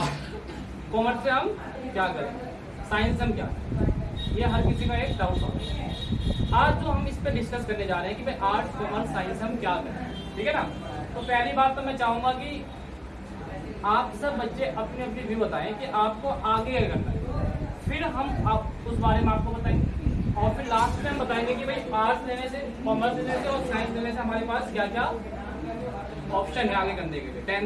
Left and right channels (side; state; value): both; identical; correlation 1.00